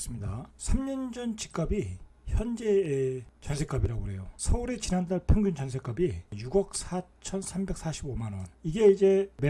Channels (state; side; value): identical; both; correlation 1.00